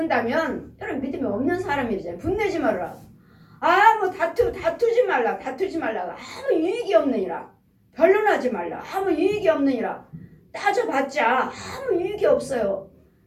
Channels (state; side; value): identical; both; correlation 1.00